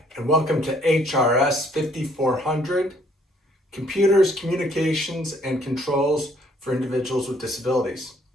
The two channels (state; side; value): normal; both; correlation 0.63